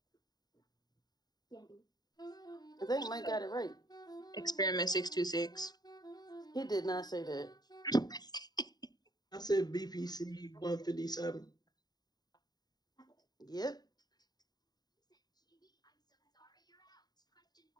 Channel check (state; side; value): late; right; 0.20 ms